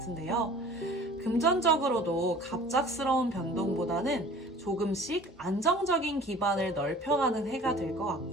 금전적으로도 갑작스러운 변동보다는 조금씩 안정적인 기반을 넓혀가는 해가 될 것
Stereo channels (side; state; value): both; normal; correlation 0.46